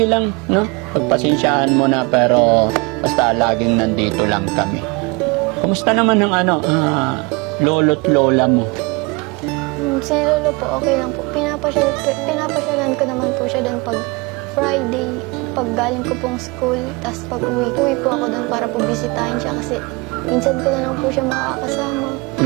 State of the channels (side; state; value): left; quieter; 27.5 dB